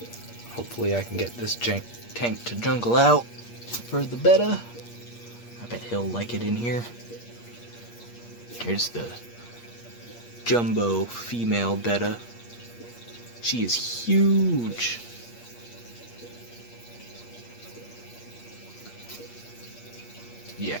Hopefully I can get this tank to jungle out for the betta. I bet he'll like it in here. Here's the jumbo female betta. She is huge. Yeah,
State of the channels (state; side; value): late; right; 8.5 ms